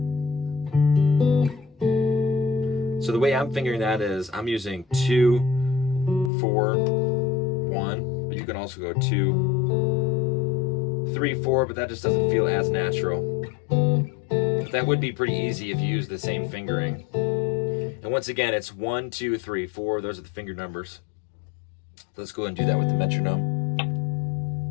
So the way I'm fingering that is I'm using 2, 4, 1, but you can also go 2, 3, 4, but that just doesn't feel as natural. But that would be pretty easy if you use the same fingering. And once again, it's 1, 2, 3, 4. Those are the finger numbers. Let's go ahead and do that with the metronome.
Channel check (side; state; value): right; drops out; at 6.3 s